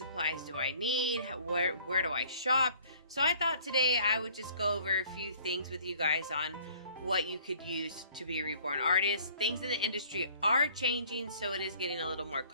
do I need, where do I shop. So I thought today I would just go over a few things with you guys on what you could use to be a reborn artist. Things in the industry are changing, so it is getting a little more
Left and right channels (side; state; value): both; inverted; correlation -0.55